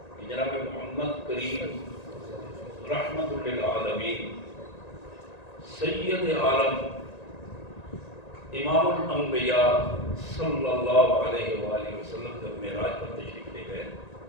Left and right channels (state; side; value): late; right; 1.9 ms